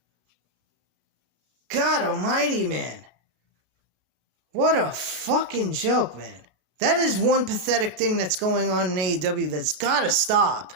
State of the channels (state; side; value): late; left; 33 ms